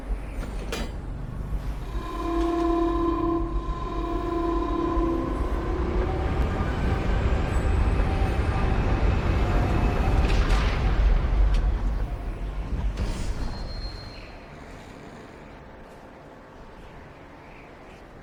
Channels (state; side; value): identical; both; correlation 1.00